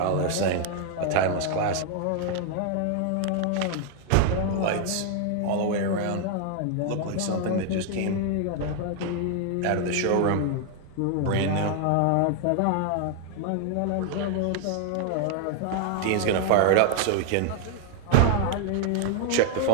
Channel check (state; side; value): different; both; correlation 0.00